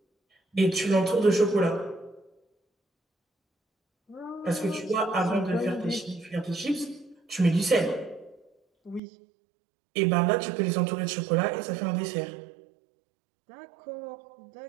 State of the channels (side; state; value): left; drops out; at 9.0 s